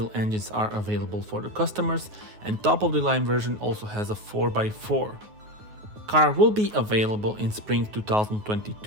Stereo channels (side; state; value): left; late; 9.4 ms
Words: engines are available for the customers, and top of the line version also has a 4x4. Car will be available in spring